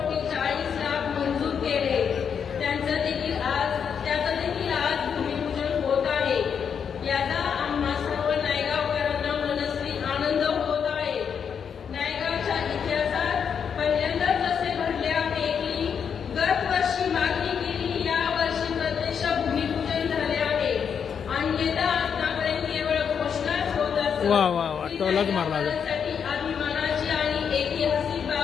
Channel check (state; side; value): quieter; right; 7.2 dB